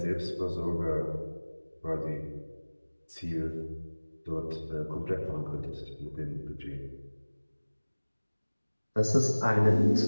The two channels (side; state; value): both; inverted; correlation -1.00